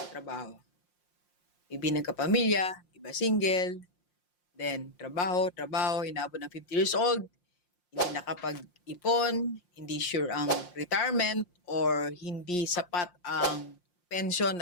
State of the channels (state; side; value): late; right; 5.6 ms